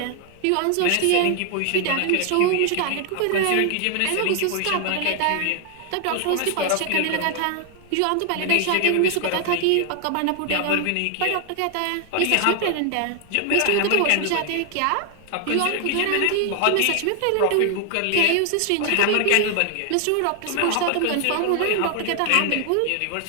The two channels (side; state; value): both; different; correlation 0.00